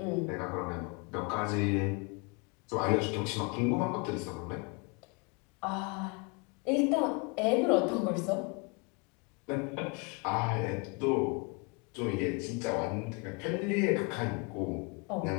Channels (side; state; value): right; quieter; 31.2 dB